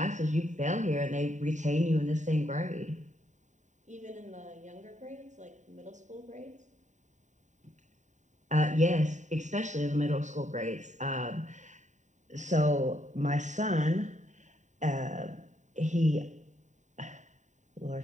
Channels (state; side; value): late; left; 0.35 ms